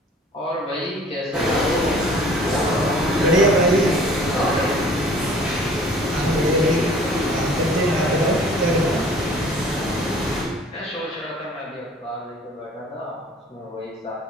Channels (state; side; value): normal; both; correlation 0.50